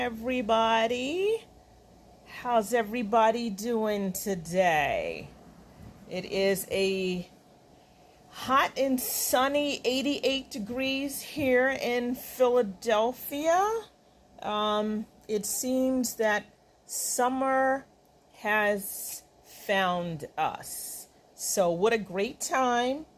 How's everybody doing today? It is a hot and sunny 88 degrees here in Philadelphia. It seems that summer has found us. So what a great time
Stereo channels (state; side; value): identical; both; correlation 1.00